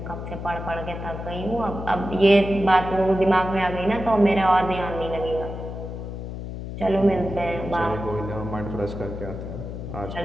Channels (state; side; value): noise; left; hum, 8 dB below the sound